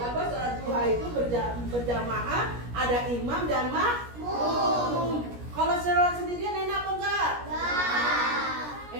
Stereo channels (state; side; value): late; left; 17 ms